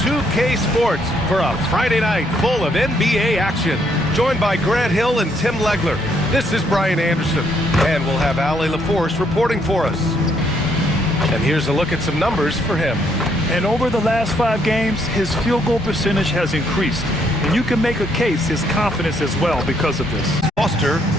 Sports for a Friday night full of NBA action. Joined by Grant Hill and Tim Legler. This is Brian Anderson, and we'll have Ali LaForce reporting for us. And here's a look at some numbers for him. And over the last 5 games, his field goal percentage has increased. And you can make a case his confidence as well because of this. Foster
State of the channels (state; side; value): normal; both; correlation 0.71